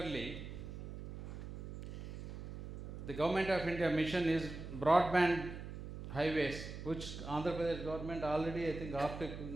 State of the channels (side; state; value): right; noise; hum, 9 dB below the sound